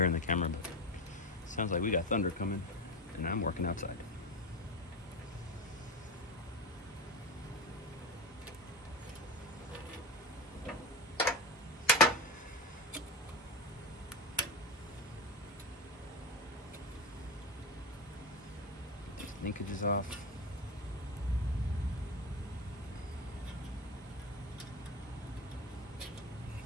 in the camera, but it sounds like we got thunder coming, and I'm working outside. Linkage is off.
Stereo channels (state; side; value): normal; both; correlation 0.21